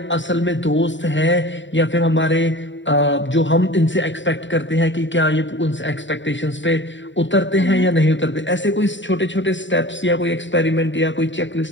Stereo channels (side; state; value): right; late; 0.54 ms